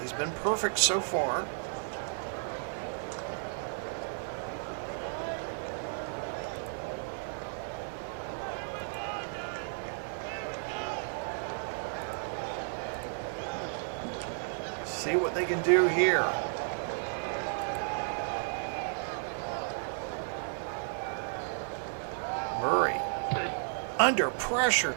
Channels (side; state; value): left; silent; digital silence